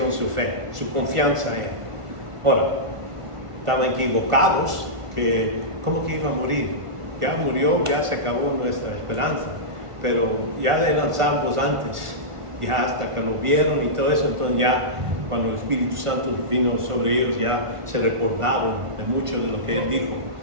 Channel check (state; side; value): late; left; 1.5 ms